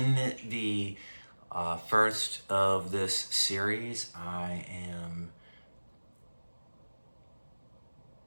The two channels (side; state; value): both; inverted; correlation -1.00